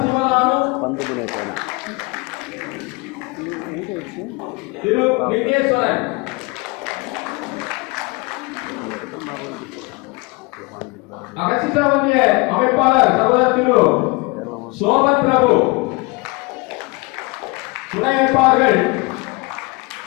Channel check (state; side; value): quieter; right; 26.6 dB